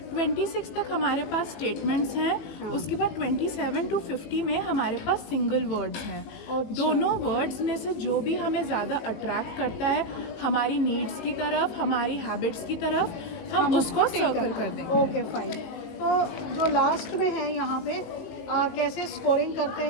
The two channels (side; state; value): right; late; 18 ms